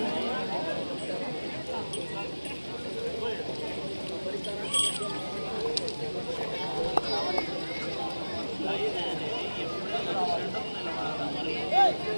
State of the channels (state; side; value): inverted; both; correlation -1.00